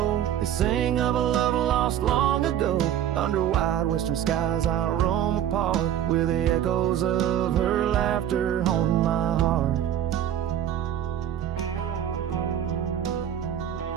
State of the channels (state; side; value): quieter; left; 10.5 dB